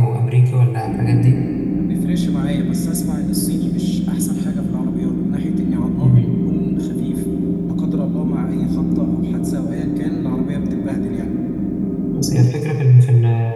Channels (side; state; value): both; identical; correlation 1.00